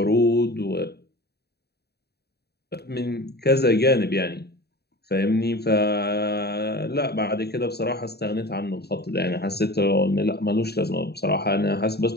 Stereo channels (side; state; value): right; late; 0.47 ms